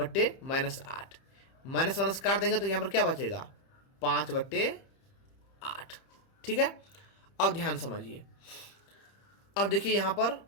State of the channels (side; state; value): right; late; 30 ms